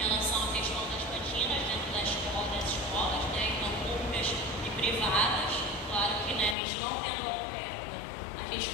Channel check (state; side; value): drops out; right; at 6.6 s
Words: relação à questão das cantinas dentro das escolas, né, então públicas e privadas. Claro que, né, a gente não tendo oferta, a gente